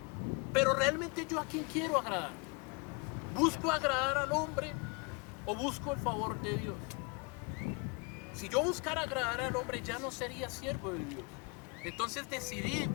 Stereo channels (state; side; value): quieter; right; 30.9 dB